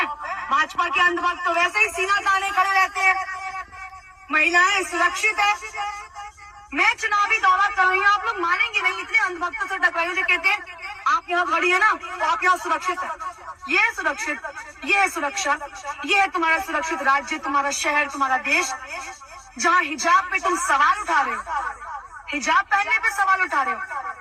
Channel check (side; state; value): both; identical; correlation 1.00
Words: भाजपा के अंधभक्त तो वैसे ही सीना ताने खड़े रहते हैं। महिलाएं सुरक्षित है। मैं चुनावी दौरा कर रही हूँ, आप लोग मानेंगे नहीं, इतने अंधभक्तों से टकराइए जो कहते हैं आप यहाँ खड़ी है ना तो आप यहाँ सुरक्षित है। ये है सुरक्षित, ये है सुरक्षा, ये है तुम्हारा सुरक्षित राज्य, तुम्हारा शहर, तुम्हारा देश, जहाँ हिजाब पे तुम सवाल उठा रहे हो। हिजाब पहनने पे सवाल उठा रहे हो।